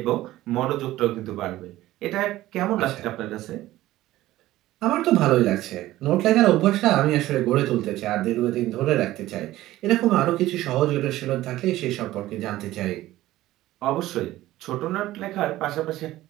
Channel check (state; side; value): quieter; left; 15.8 dB